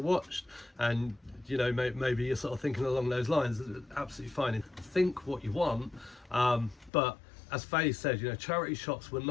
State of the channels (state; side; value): drops out; right; at 6.9 s